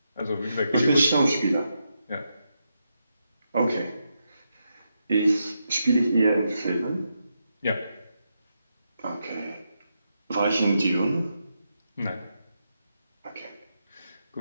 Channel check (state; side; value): inverted; both; correlation -0.84